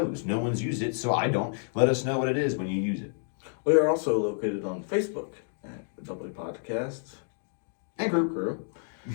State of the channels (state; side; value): silent; right; digital silence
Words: No one's used it, so I don't. Let us know what it is when you use it. We are also located on Facebook at the Double Podcast And group. Crew.